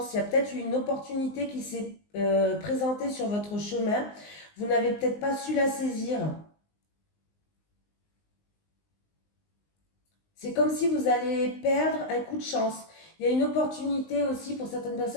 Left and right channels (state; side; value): late; right; 19 ms